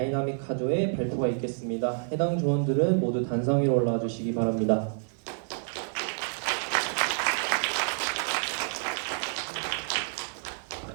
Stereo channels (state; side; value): silent; left; 59 dB below the other